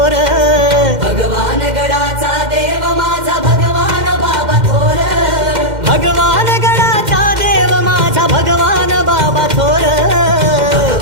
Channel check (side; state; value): left; late; 2.1 ms